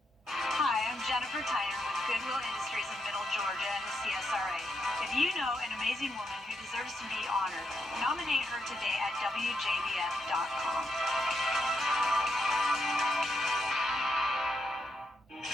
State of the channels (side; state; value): both; normal; correlation 0.80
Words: Hi, I'm Jennifer Tyner with Goodwill Industries of Middle Georgia and the CSRA. If you know an amazing woman who deserves to be honored, nominate her today at WJBF.com.